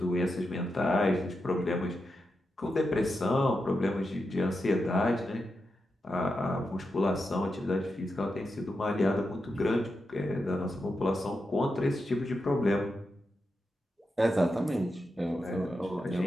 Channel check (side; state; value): both; normal; correlation 0.88